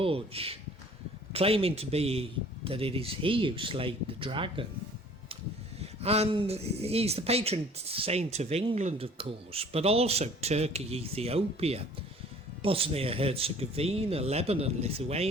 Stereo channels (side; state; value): both; normal; correlation 0.51